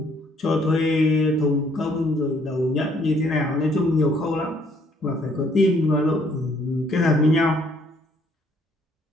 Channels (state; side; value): normal; both; correlation 0.65